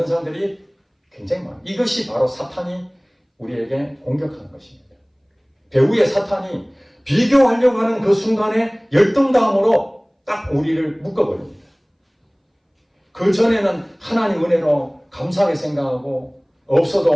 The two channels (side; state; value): both; identical; correlation 1.00